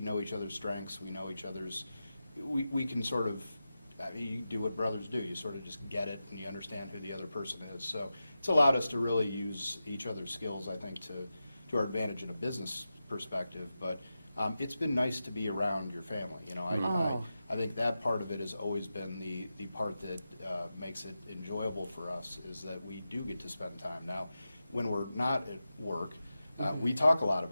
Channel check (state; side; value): inverted; both; correlation -0.92